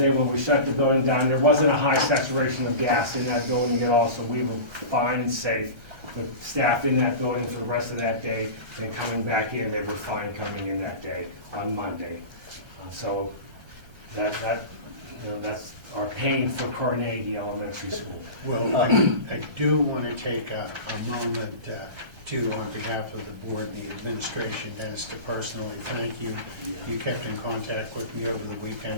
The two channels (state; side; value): late; left; 1.3 ms